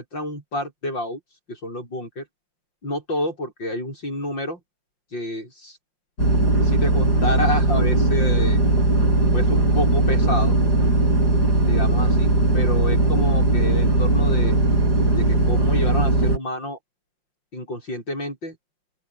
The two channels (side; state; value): right; late; 4.9 ms